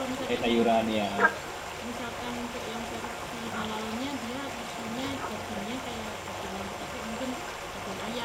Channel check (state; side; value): identical; both; correlation 1.00